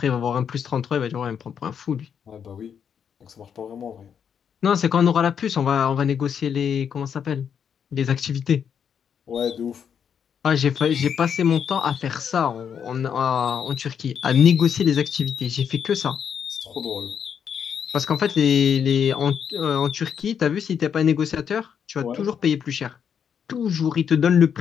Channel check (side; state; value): right; quieter; 7.7 dB